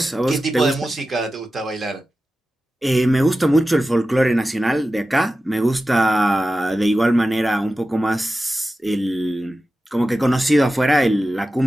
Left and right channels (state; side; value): normal; both; correlation 0.94